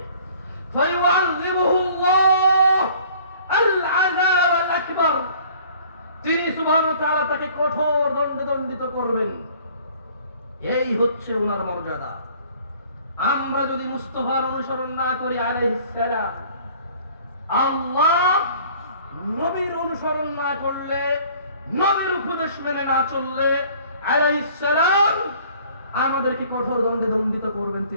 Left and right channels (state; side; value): inverted; both; correlation -0.53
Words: ফায়ুআযিবুহুল্লাহ আল আযাব আল আকবার, তিনি সুবহানাহু ওয়া তাআলা তাকে কঠোর দণ্ডে দণ্ডিত করবেন। এই হচ্ছে ওনার মর্যাদা। আমরা যদি মুস্তাফার অনুসরণ না করি আলাইহিস সালাম, আল্লাহ নবীর অনুসরণ না করলে, নবীর উপদেশ মেনে না চললে আলাইহিস সালাম আমাদেরকে কঠোর দণ্ডে দণ্ডিত করবেন।